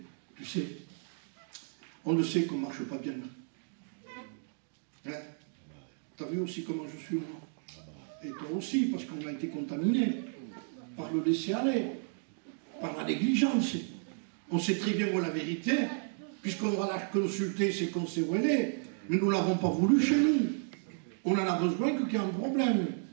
Tu sais, on le sait qu'on ne marche pas bien. Hein? Tu as vu aussi comment je suis, moi. Et toi aussi, parce qu'on a été contaminé par le laisser-aller, par la négligence. On sait très bien où est la vérité, puisqu'on va la consulter, c'est qu'on sait où elle est. Mais nous ne l'avons pas voulu chez nous. On en a besoin qu'il y ait un problème.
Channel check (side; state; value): left; silent; 56 dB below the other